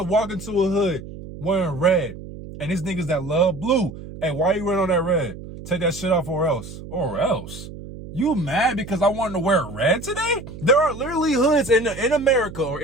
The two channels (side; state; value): right; noise; hum, 13 dB below the sound